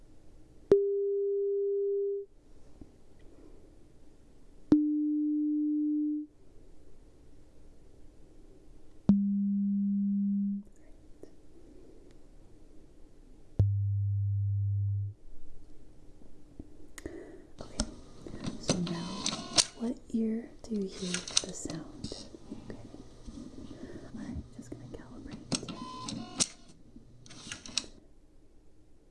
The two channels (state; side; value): identical; both; correlation 1.00